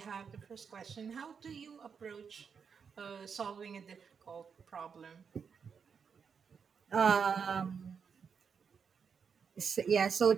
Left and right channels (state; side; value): quieter; left; 6.4 dB